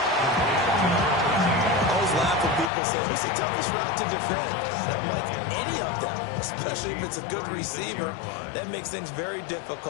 I always laugh when people say, what's the toughest route to defend? I'm like, any of them, especially if it's a good receiver. That makes things very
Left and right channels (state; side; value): drops out; right; at 2.7 s